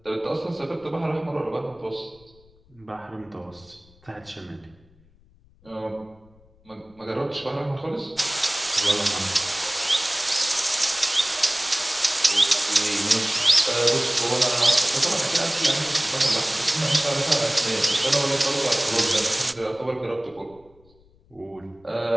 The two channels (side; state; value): left; noise; rumble, 30 dB below the sound